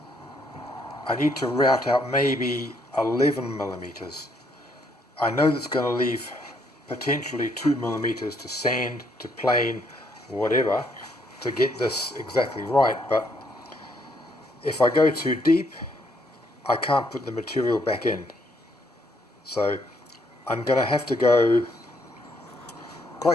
I need to route out maybe 11 millimeters. I know that's going to leave potentially 2 millimeters to sand, to plane, whatever, to get this exactly right, but if I go too deep, I can't put the material back in. So I'm going to have to go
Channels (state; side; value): normal; both; correlation 0.71